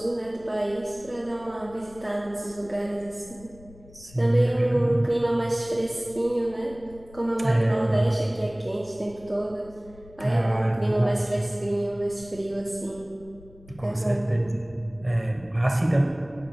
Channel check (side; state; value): left; noise; rumble, 22 dB below the sound